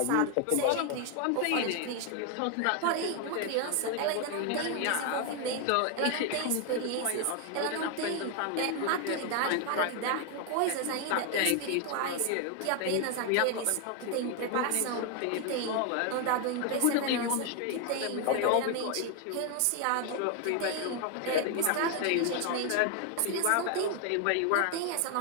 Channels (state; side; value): different; both; correlation 0.00